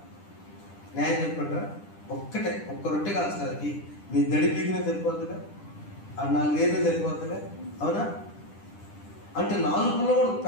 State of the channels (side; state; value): right; late; 10 ms